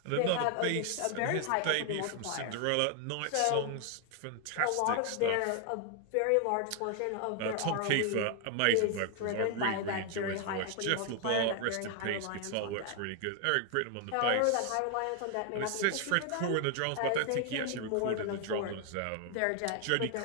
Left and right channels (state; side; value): different; both; correlation 0.00